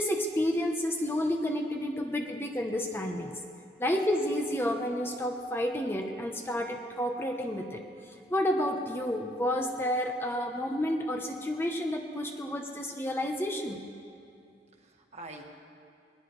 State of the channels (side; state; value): both; normal; correlation 0.71